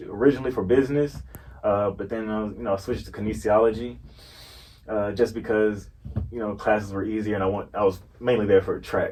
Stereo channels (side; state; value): both; identical; correlation 1.00